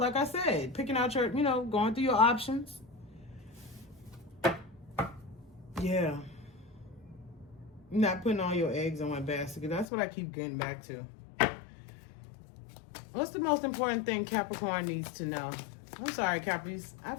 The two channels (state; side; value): drops out; right; at 9.9 s